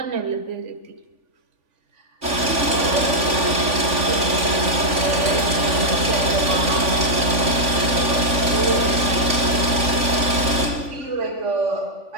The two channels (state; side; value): late; left; 3.5 ms